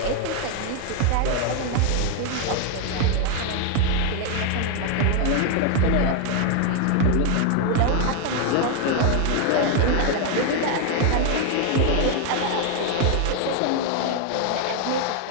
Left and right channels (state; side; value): different; both; correlation 0.01